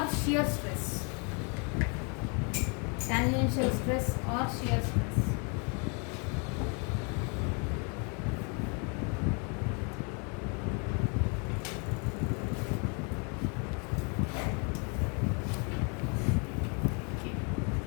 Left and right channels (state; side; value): quieter; right; 35.4 dB